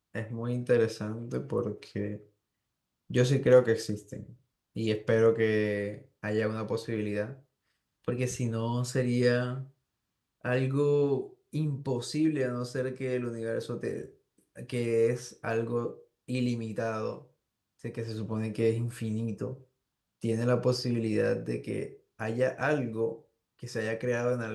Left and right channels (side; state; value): both; identical; correlation 1.00